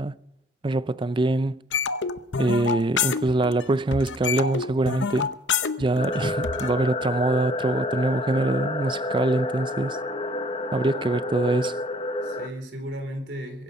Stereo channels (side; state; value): both; normal; correlation 0.58